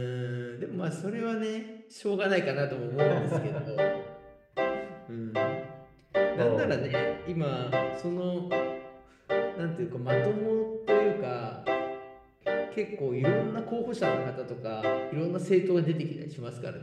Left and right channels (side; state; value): both; identical; correlation 1.00